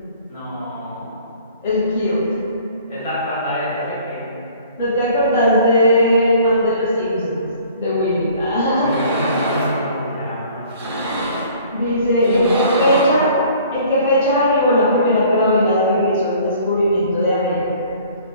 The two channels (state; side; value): inverted; both; correlation -0.53